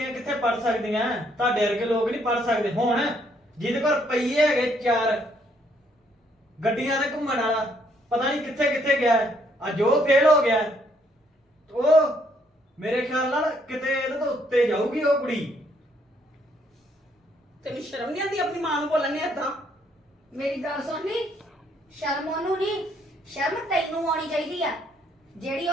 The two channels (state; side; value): normal; both; correlation 0.69